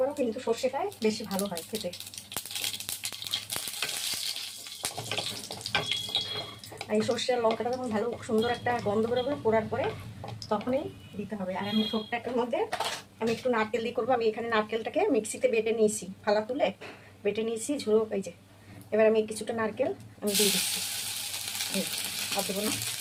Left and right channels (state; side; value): identical; both; correlation 1.00